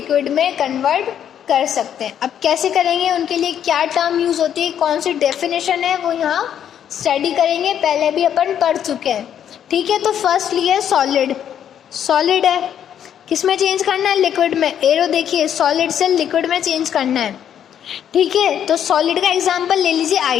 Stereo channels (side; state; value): right; quieter; 9.5 dB